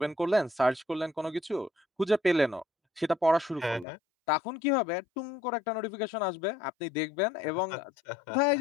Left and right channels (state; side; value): drops out; right; at 3.9 s